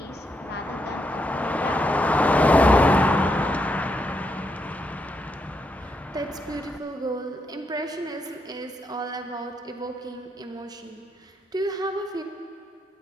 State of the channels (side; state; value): both; normal; correlation 0.80